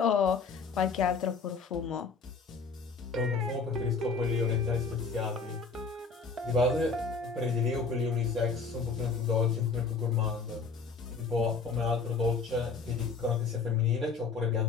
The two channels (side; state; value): right; quieter; 4.8 dB